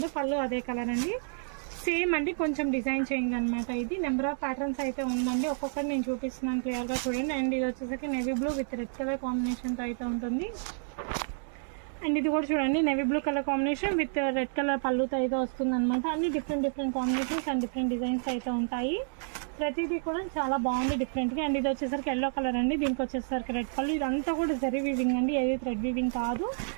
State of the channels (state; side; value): silent; left; digital silence